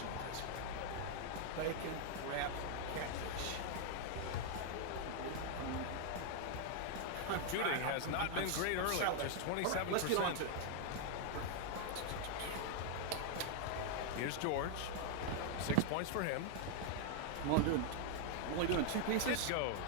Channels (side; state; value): both; different; correlation 0.00